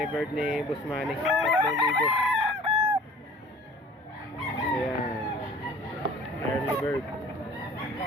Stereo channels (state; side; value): normal; both; correlation 0.47